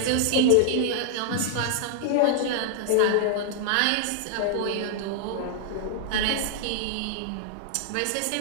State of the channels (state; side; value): different; both; correlation -0.01